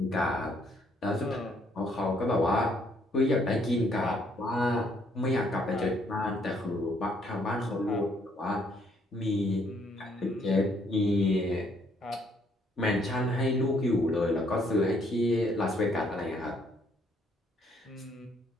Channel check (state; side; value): normal; both; correlation 0.68